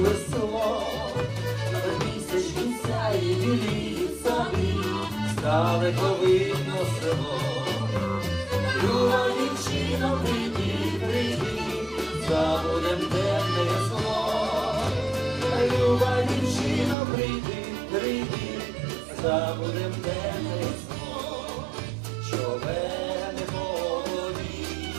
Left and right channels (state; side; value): drops out; left; at 16.9 s